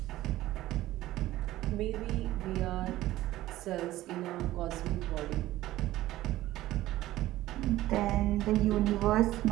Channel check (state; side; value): quieter; left; 15.6 dB